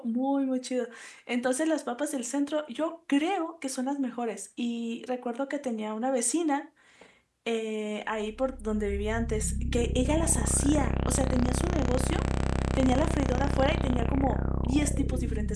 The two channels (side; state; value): both; identical; correlation 1.00